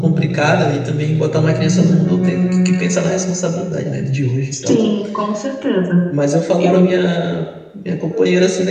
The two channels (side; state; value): both; identical; correlation 1.00